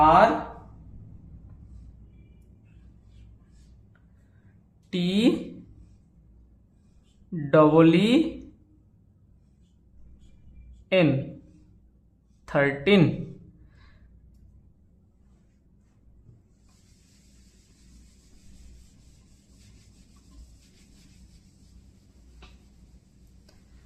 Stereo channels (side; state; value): both; identical; correlation 1.00